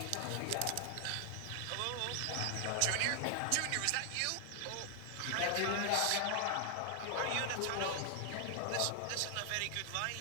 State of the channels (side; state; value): both; different; correlation 0.00